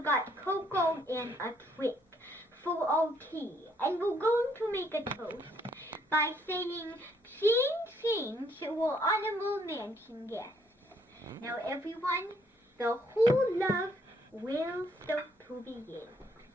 got cocoa and a trick for our tea. And we're going to make a toast by saying, ching ching to our honorable mansion guests. Now everyone, the whole love will start to begin.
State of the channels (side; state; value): both; normal; correlation 0.68